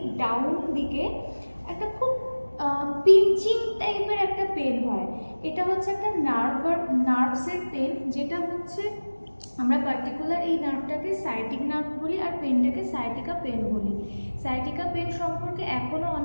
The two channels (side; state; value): both; inverted; correlation -1.00